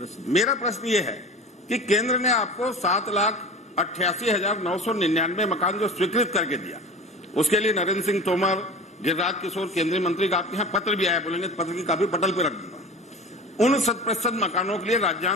मेरा प्रश्न ये है कि केंद्र ने आपको 7,88,999 मकान जो स्वीकृत करके दिया, उसके लिए नरेंद्र सिंह तोमर, गिरिराज किशोर केंद्रीय मंत्री का आपके यहाँ पत्र भी आया, बोलेंगे पत्र की कापी पटल पे रख दूंगा। उन 100% मकानों के लिए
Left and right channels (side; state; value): both; normal; correlation 0.35